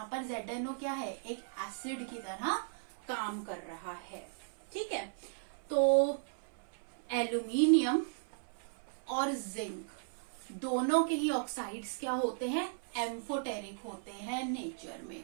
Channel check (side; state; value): left; silent; 54 dB below the other